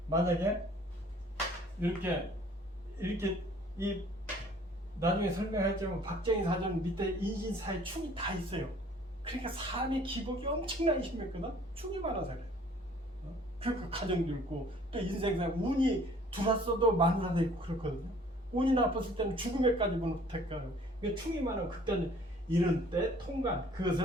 만약에 이렇게 이 나중에 설명할지만 박정희 사전 밑에 인신사의 충이 다 있어요. 그러니까 삶의 기복이 엄청나게 심했거든. 충이 많아서 그래요. 그러니까 가정도 있고 또 인생상 운이 들어왔어도 마누라도 있고 그렇거든요. 운이 나빴을 때는 죽음에까지 못할까요. 충이 많으면 그때는 이런 때 통관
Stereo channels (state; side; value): normal; both; correlation 0.55